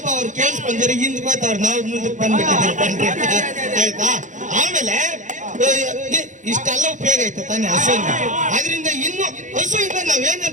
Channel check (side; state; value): left; late; 0.36 ms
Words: ಅವ್ರು ಕೇಳಿಸ್ಕೊಂಡ್ರೆ ಹಿಂದ್ ಬರ್ತಾವ್ರ, ನಾವು ಮುಂದಕ್ಕೆ ಬಂದ್ಬಿಟ್ಟಿದ್ದೀವಿ. ಆಯ್ತಾ? ಆಮೇಲೆ ಇಷ್ಟೆಲ್ಲ ಉಪಯೋಗ ಐತೆ ತಾನೇ ಹಸುವಿಂದ. ಅದರಿಂದ ಇನ್ನು ಹಸುವಿಂದ